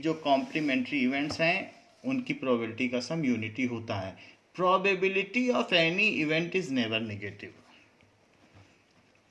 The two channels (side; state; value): both; identical; correlation 1.00